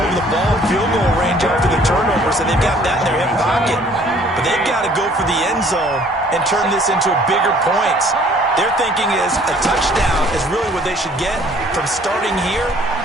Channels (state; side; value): normal; both; correlation 0.57